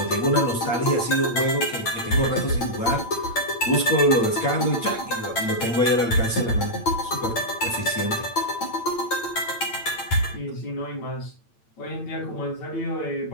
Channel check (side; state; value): right; late; 8.8 ms